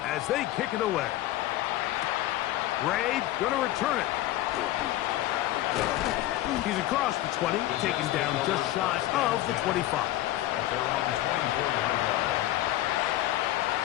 as they kick it away. Ray going to return it. He's across the 20, taken down just shy of the 25. At their own 24-yard line.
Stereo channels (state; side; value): quieter; right; 15.0 dB